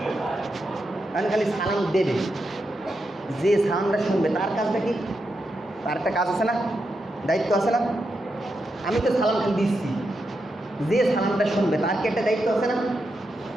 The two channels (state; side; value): normal; both; correlation 0.85